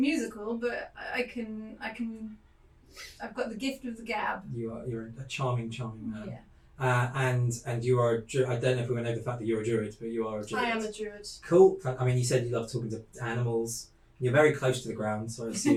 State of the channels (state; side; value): identical; both; correlation 1.00